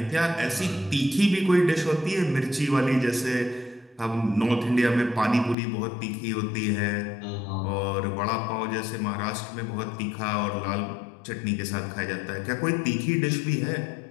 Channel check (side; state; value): right; drops out; at 5.6 s